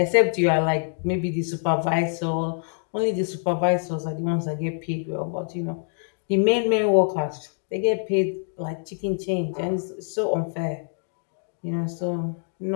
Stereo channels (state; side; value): silent; right; 62 dB below the other